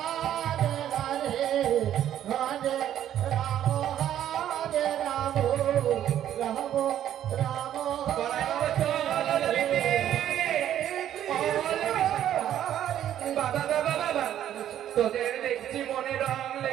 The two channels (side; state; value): left; quieter; 11.1 dB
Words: হরে হরে রাম হরে রাম রাম রাম বড়াই বাবা চল ললিতে। বাবা বাবা বাবা, তোদের দেখছি মনে রং